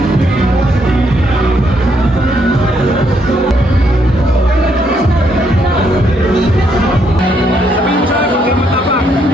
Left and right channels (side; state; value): both; normal; correlation 0.74